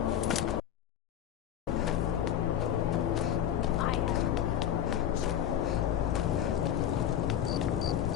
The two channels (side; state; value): right; quieter; 10.3 dB